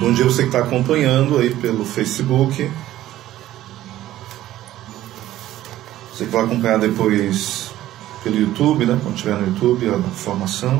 dia você que está acompanhando aí pelo Facebook. Você que vai acompanhar depois pelo YouTube, né? Quando estiver no YouTube, a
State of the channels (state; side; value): quieter; left; 14.1 dB